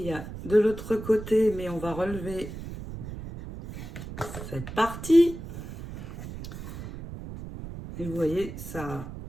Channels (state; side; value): noise; right; rumble, 10 dB below the sound